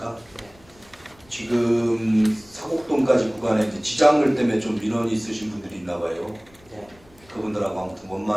지금 사곡동까지 구간에 이제 지장물 때문에 좀 민원이 있으신 분들이 있나 봐요. 네. 그분들하고 아무튼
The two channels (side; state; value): left; noise; rumble, 28 dB below the sound